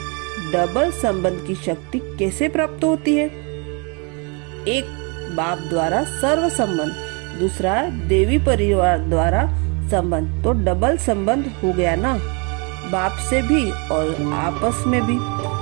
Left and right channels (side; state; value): left; quieter; 32.9 dB